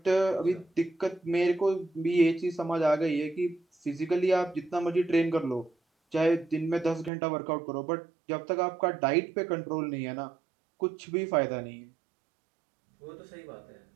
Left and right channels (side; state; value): left; drops out; at 7.1 s